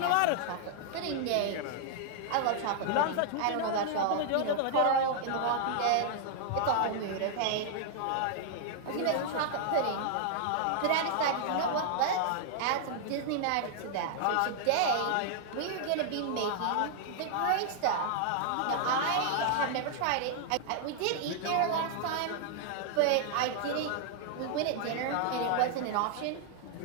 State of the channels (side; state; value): both; different; correlation -0.01